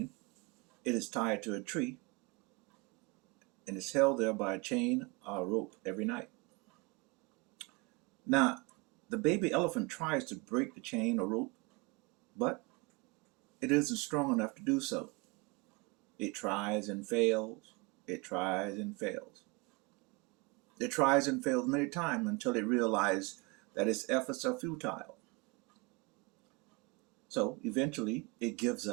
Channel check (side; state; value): left; quieter; 26.5 dB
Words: it is tied to a tree and is held there by a chain or a rope every night. Now, the baby elephant tries to break the chain or rope, but it isn't strong enough to do so. It tries and fails. It tries and fails. It tries and fails many times until it realizes that its efforts are futile. So eventually it gives